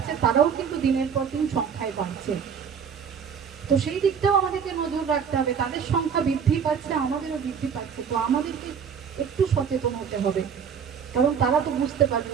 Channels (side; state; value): left; quieter; 7.0 dB